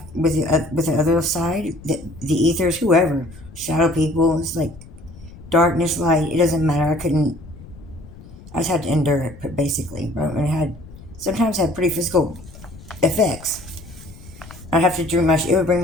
side, the ethers, whoever, shadow people. It's like darkness, light. It doesn't matter. I just had to endure it, basically. And sometimes had pretty physical effects. I'd have to it would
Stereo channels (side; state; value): left; noise; rumble, 18 dB below the sound